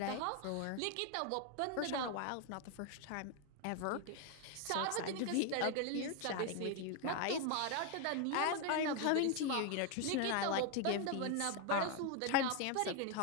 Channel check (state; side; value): different; both; correlation 0.01